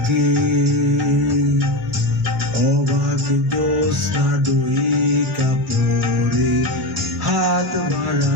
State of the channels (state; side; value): normal; both; correlation 0.19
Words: অবাক জ্যোৎস্না ডইকা পরে হাত